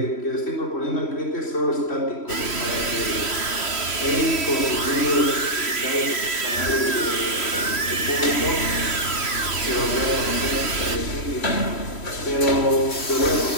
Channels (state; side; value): late; right; 3.1 ms